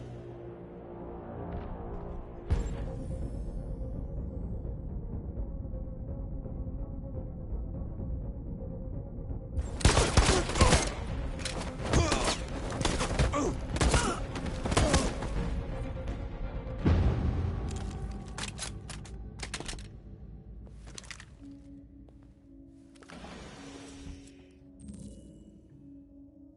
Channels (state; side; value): identical; both; correlation 1.00